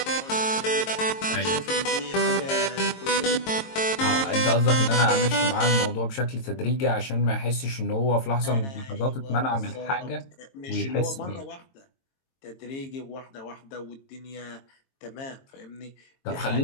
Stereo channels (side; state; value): right; late; 22 ms